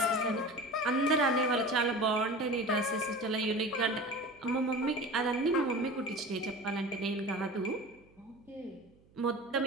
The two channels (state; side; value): noise; right; hum, 30 dB below the sound